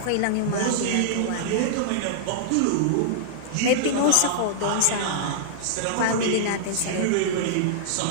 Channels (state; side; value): different; both; correlation -0.01